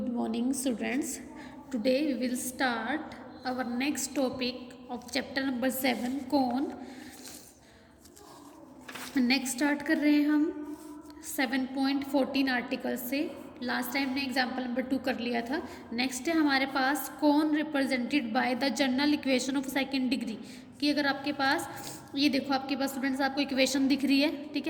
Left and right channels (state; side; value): identical; both; correlation 1.00